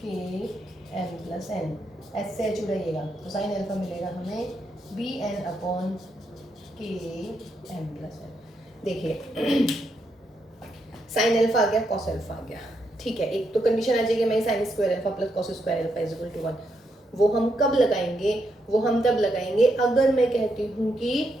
एम प्लस एन, एस से एच उड़ाइएगा, तो sin अल्फा मिलेगा हमें बी एन अपॉन के एम प्लस एन। देखिए sin अल्फा आ गया, cos अल्फा आ गया, ठीक है। एक तो कंडीशन आ जाएगी मैं sin square alpha plus cos square alpha is equal to 1। वो हम कब लगाएंगे, वो हम तब लगाएंगे अगर मैं कहती हूँ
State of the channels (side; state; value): both; normal; correlation 0.80